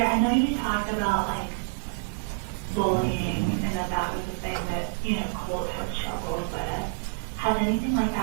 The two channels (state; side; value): silent; left; 58 dB below the other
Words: I know you talked about like bullying and that was the thing that, you know, Colt had struggled with. Has anything like